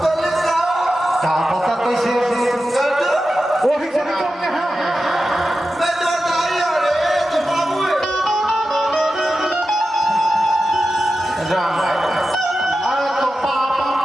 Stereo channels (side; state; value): both; normal; correlation 0.92